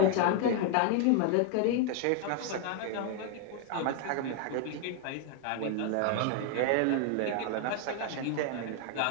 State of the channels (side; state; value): both; different; correlation 0.00